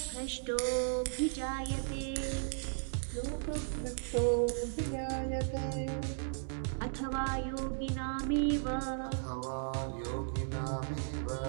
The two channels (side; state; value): left; silent; digital silence